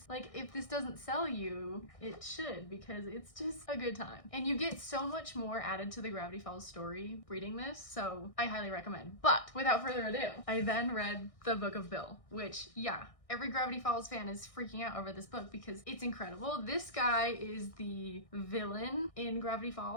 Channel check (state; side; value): late; right; 1.6 ms